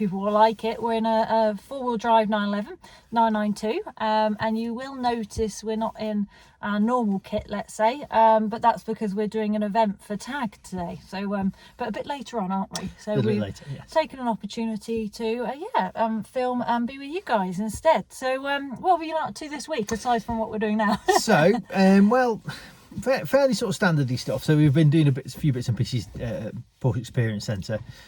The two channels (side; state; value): both; identical; correlation 1.00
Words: will like it. We're in a four-wheel drive 911, 992, and you will notice we're not in our normal kit, let's say, but that's because we're doing an event for TAG today. So, but a bit later on, aren't we? So we've taken an opportunity to, film and be with you guys instead. So, what have you been up to this week aside from what we're doing now? So, fairly sort of standardy stuff. So we've been doing a few bits and pieces Porsche Experience Centre.